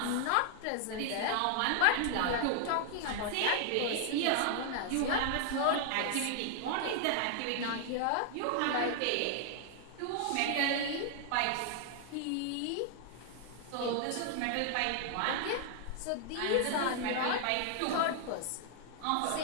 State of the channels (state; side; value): different; both; correlation 0.00